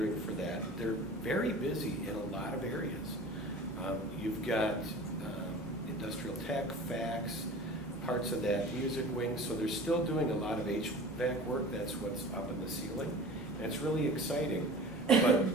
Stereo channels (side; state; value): both; normal; correlation 0.39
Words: for that. They're very busy in a lot of areas. You've got industrial tech, fax, parts of that music wing, so they're still doing a lot of HVAC work. That's what's up in the ceiling, and it's really exciting. But